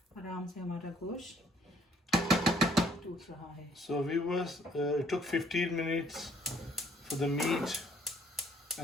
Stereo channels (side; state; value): both; normal; correlation 0.63